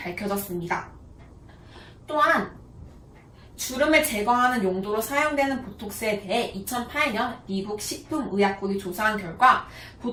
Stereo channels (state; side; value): identical; both; correlation 1.00